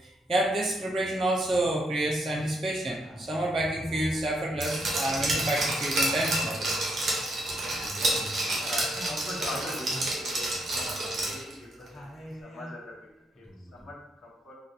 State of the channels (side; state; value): both; normal; correlation 0.76